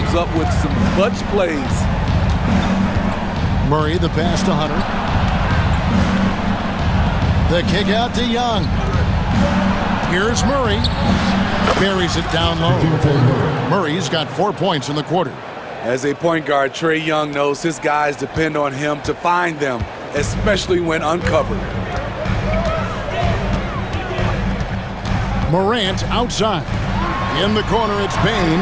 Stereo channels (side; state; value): both; identical; correlation 1.00